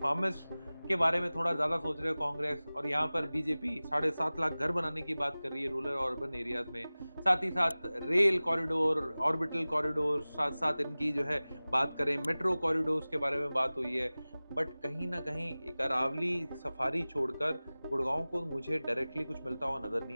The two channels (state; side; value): inverted; both; correlation -0.98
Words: फार्मर्स के बारे में थोड़ा ज्यादा सोच रहे हो कांग्रेस, और यहाँ पर बीजेपी 7.5 लाख घर बनाने की बात कर रही है रूरल और अर्बन एरियाज में। साथ ही साथ रेल कॉरिडोर, ऑर्बिटल कॉरिडोर, साथ साथ इनकी जो है बात करें मेट्रो कॉरिडोर्स के बारे में बात हुई है। बट कहीं ना कहीं एक अरावली सफारी छोड़कर गुड़गांव को मुझे डायरेक्टली कुछ मिलता हुआ नजर